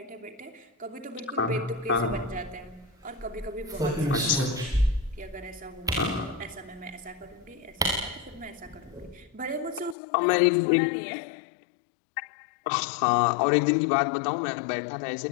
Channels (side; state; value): right; drops out; at 10.0 s